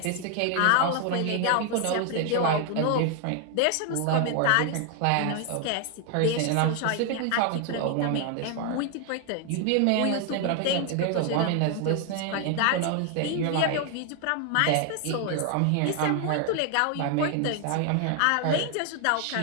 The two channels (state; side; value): different; both; correlation 0.00